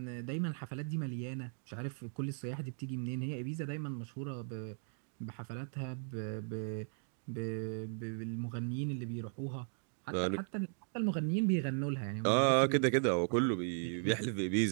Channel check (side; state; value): left; silent; digital silence